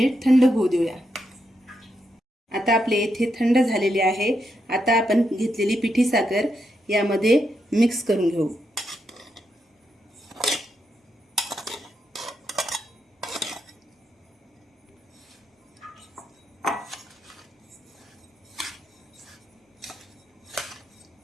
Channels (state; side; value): normal; both; correlation 0.82